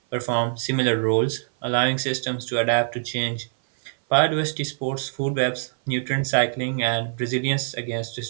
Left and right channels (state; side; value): silent; left; 58 dB below the other